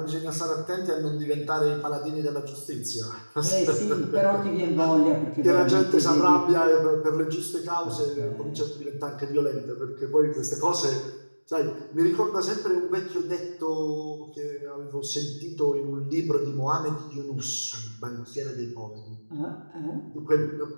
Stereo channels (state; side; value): inverted; both; correlation -1.00